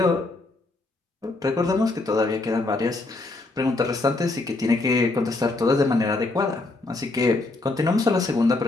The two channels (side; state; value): right; quieter; 3.1 dB